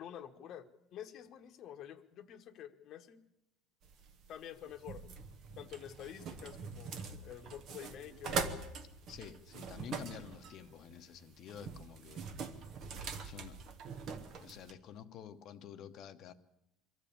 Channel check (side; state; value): both; normal; correlation 0.44